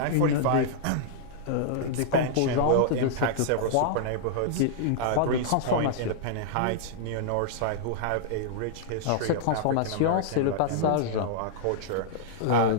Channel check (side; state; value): both; different; correlation -0.01